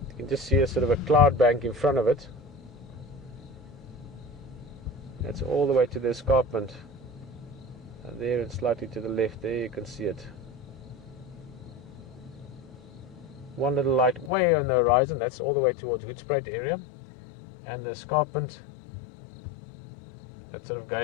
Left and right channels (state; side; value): drops out; right; at 14.3 s